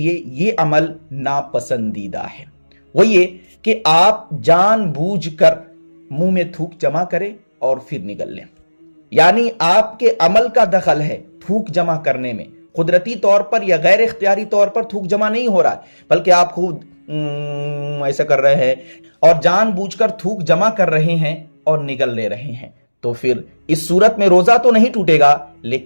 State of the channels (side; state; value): both; inverted; correlation -1.00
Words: यह अमल नापसंदीदा है। वो ये कि आप जानबूझकर मुंह में थूक जमा करें और फिर निगल लें, यानी आपके अमल का दखल है थूक जमा करने में। कुदरती तौर पर या गैर इख्तियारी तौर पर थूक जमा नहीं हो रहा है, बल्कि आप खुद ऐसा कर रहे हैं और जानबूझकर थूक जमा कर रहे हैं और निगल ले रहे हैं। तो फिर इस सूरत में रोजा तो नहीं टूटेगा